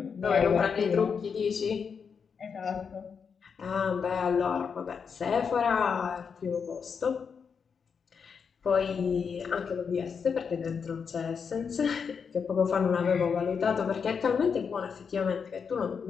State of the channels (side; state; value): right; quieter; 6.2 dB